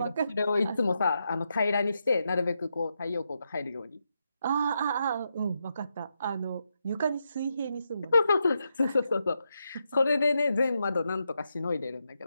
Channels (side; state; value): both; inverted; correlation -0.84